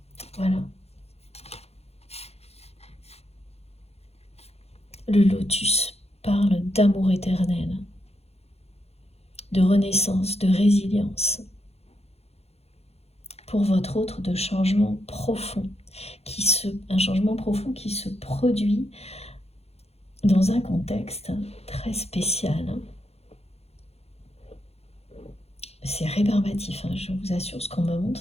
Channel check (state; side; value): late; right; 0.30 ms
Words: Voilà. Le lotus parle d'amour éternel, de renaissance, de résilience. Pour votre autre, de changement profond, un changement profond qui se produit dans un contexte très spécial. C'est rébarbatif, hein, je vous assure, ce qu'on me montre,